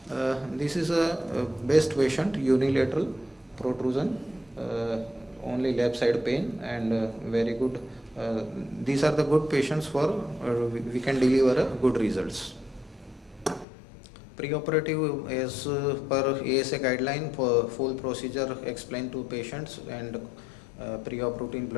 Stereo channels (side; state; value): right; drops out; at 13.7 s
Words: this is a best patient, unilateral protrusion, only left side pain, and very good. These are the good patients for we can deliver good results. Preoperative, as per ASA guideline, for full procedure explained to patients, and pre-op routine